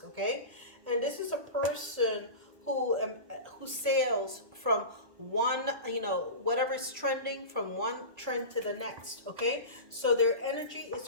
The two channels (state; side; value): late; left; 1.5 ms